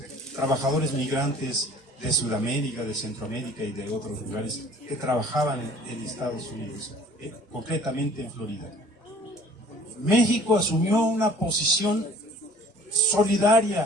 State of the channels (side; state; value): both; normal; correlation 0.51